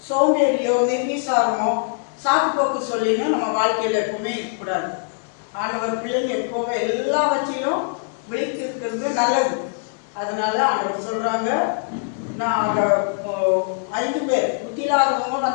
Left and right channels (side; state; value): right; silent; 64 dB below the other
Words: சோம்பேறியோ நிர்விசாரமோ சாக்குப்போக்கு சொல்லின்னு நம்ம வாழ்க்கையில எப்பவுமே இருக்கக்கூடாது. ஆண்டவர் பிள்ளைங்க எப்போவே எல்லாவற்றையும் விழித்திருக்கிறது நல்லது. அதனால ஆண்டவர் சொல்றாங்க, நான் 5 பேர் புத்தியில்லாதவங்க